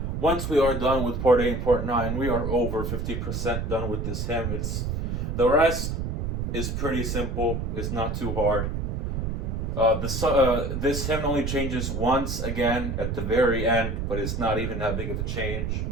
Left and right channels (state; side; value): noise; right; rumble, 2 dB below the sound